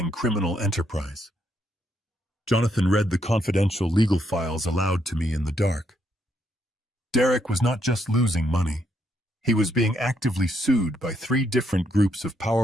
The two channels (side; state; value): both; normal; correlation 0.75